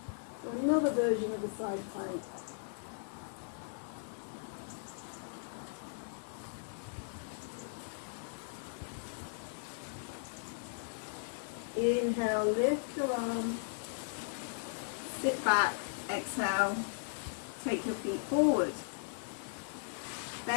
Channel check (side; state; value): right; silent; digital silence